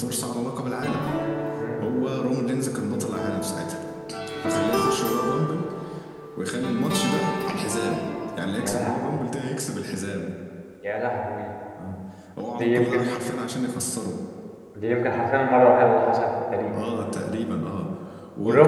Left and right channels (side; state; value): both; identical; correlation 1.00